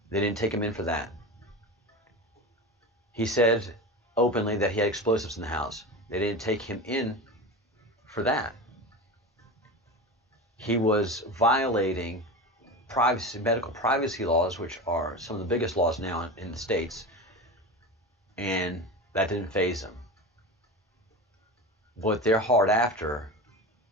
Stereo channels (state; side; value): normal; both; correlation 0.27